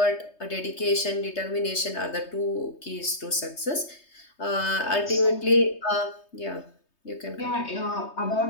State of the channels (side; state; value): right; late; 3.3 ms